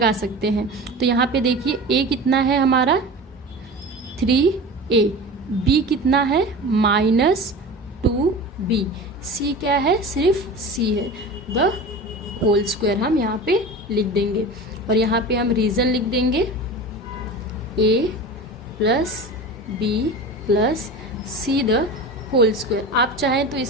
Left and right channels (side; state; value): both; normal; correlation 0.32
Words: सकते हैं। तो यहाँ पे देखिए a कितना है हमारा 3a, b कितना है -2b, c क्या है सिर्फ c है, द होल स्क्वायर हम यहाँ पे लिख देंगे। और यहाँ पे हम रीज़न लिख देंगे a plus b plus c the whole square. आप चाहें तो